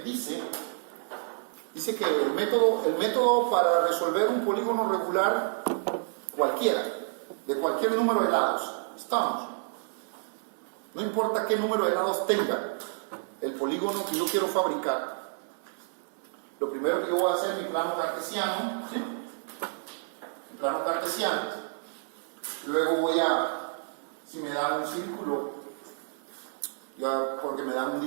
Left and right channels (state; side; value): silent; left; 56 dB below the other